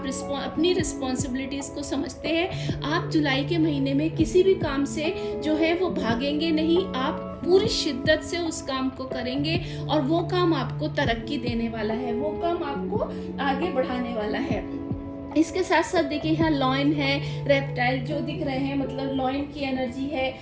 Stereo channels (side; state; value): both; identical; correlation 1.00